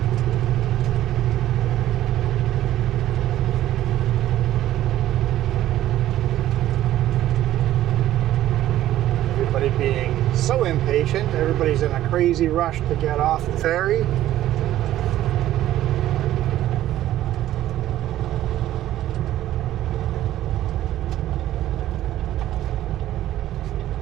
Everybody's in a crazy rush to get off the ferry.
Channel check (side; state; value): left; quieter; 13.5 dB